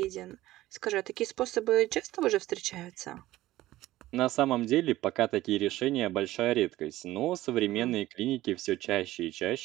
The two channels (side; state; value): left; quieter; 16.0 dB